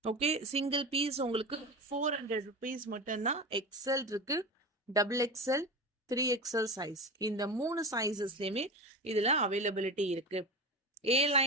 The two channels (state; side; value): normal; both; correlation 0.26